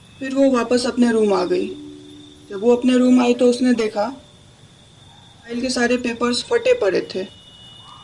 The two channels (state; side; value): identical; both; correlation 1.00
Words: फिर वो वापस अपने रूम आ गई। जब वो अपने रूम आई तो उसने देखा फाइल के सारे पेपर्स फटे पड़े थे।